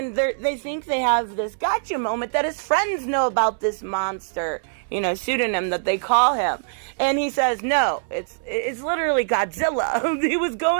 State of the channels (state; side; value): silent; left; 61 dB below the other